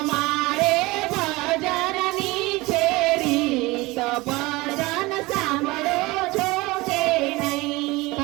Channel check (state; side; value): quieter; left; 21.8 dB